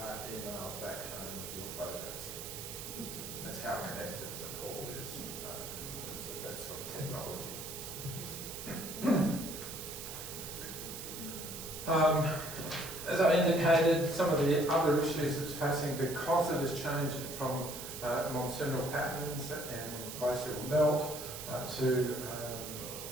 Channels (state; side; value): noise; right; hiss, 9 dB below the sound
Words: emails back home with your photos. That's how connected Nepal is in terms of that sort of technology. As I indicated, some of the other issues it's facing because of this change from monsoonal patterns and glacial melt to